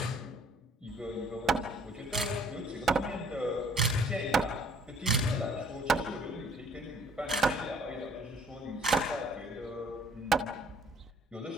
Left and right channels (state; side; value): normal; both; correlation 0.59